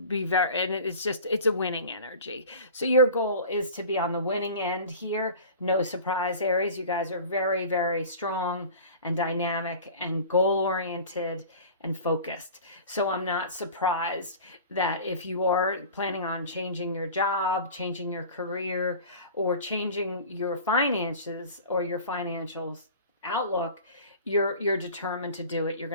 a winning energy. So your goal is to be on the winning end here. No surprise, Aries. You guys are very, very strong and dynamic and goal-oriented and focused. So I'm not surprised that if you are planning on changing your job, changing your career, or changing your finances or your financial outlook, you're determined to do it. You're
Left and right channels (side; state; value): both; inverted; correlation -0.39